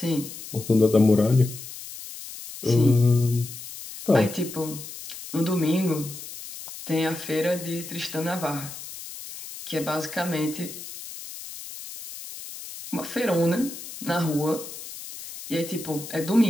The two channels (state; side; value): noise; left; hiss, 12 dB below the sound